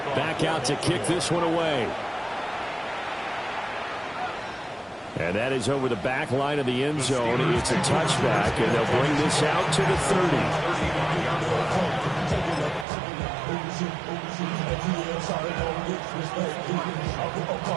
back out to kick this one away. And that is over the back line of the end zone. It's a touchback, and they'll bring this out to the 30.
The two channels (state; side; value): drops out; left; at 12.9 s